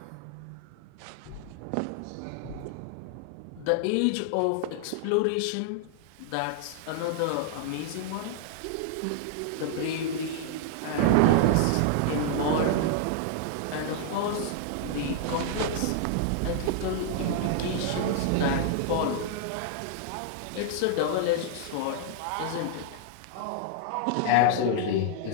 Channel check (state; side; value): different; both; correlation -0.01